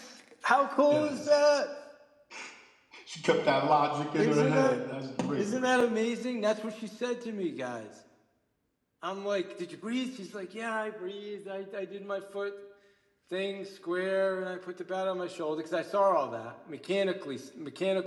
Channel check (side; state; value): both; identical; correlation 1.00